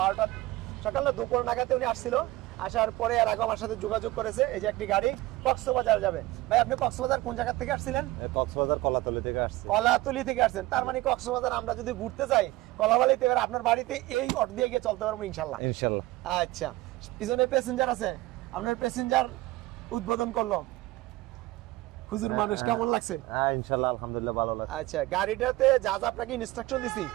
সকাল না দুপুর নাগাদে উনি আসছিল, আসার পরে আর আগে আমার সাথে যোগাযোগ করেছে। এই যে একটি গাড়ি কক্সবাজার যাবে। ভাই আপনি কক্সবাজার কোন জায়গা থেকে আসছিলেন? কক্সবাজার কলাতলি থেকে আসছি। কলাতলি থেকে আসছেন, তার মানে কক্সবাজার আমরা যদি ঘুরতে যাই কলাবালিতে, এবার আপনার বাড়িতে এই অটো দিয়ে গিয়ে চলতে পারবো ইনশাল্লাহ। ইনশাআল্লাহ। আচ্ছা, পিছনে প্যাসেঞ্জার আছে, আপনার প্যাসেঞ্জার উদ্বোধন করলো হুজুর মানুষ, কেমন লাগছে? হ্যাঁ ইনশাআল্লাহ আলহামদুলিল্লাহ ভালো লাগছে। আচ্ছা, গাড়িটাতে যা যা আপনাকে ইনস্ট্রাকশন দিছি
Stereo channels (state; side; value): quieter; left; 18.6 dB